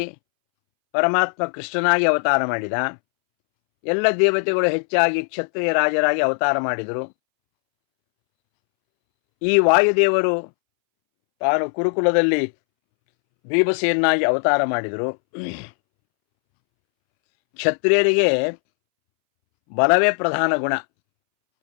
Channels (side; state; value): right; silent; 65 dB below the other